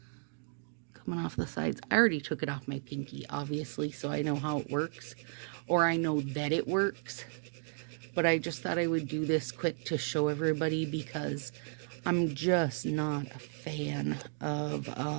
Coming off the sides. I already took it off my pinky, obviously, so I know how it works, or I know that it works. But I just thought I would do this quick to show everybody, because I'm just not a fan of,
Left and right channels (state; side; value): silent; left; 55 dB below the other